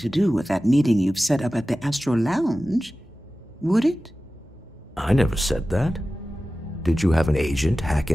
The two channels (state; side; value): normal; both; correlation 0.95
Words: do with that meeting you've set up at the Astro Lounge, would it? I never said that. Did you have an agent hack